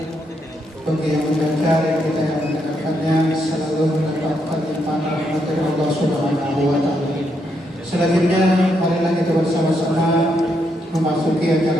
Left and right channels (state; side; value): normal; both; correlation 0.78